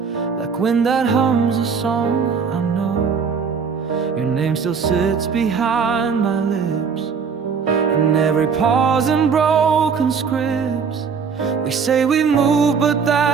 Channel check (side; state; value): left; quieter; 6.0 dB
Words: like wind that hums a song I know. Your name still sits behind my lips, in every pause and broken scripts. We say we move, but